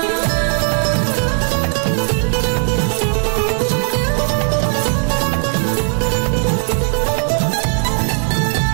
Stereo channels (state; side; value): quieter; left; 39.4 dB